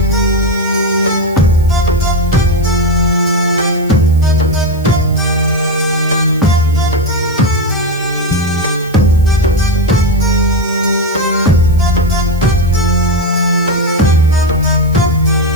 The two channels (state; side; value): noise; right; hiss, 24 dB below the sound